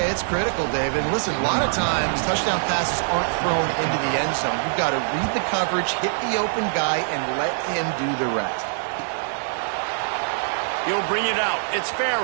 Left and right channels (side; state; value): left; silent; digital silence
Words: it's critical, David. Listen, a lot of times, touchdown passes aren't thrown into the end zone. You've got to read the coverage, hit the open guy, and let him do the rest. He'll bring it out. It's